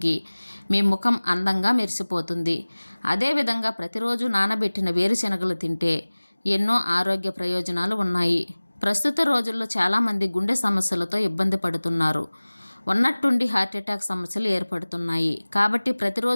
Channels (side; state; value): both; inverted; correlation -1.00